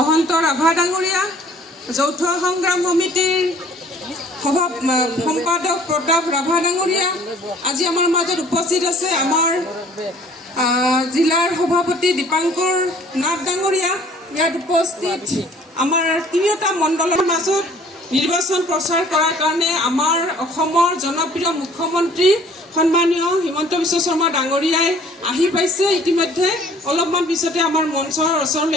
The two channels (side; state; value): both; normal; correlation 0.54